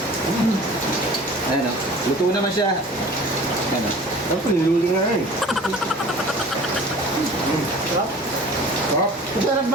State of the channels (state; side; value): normal; both; correlation 0.43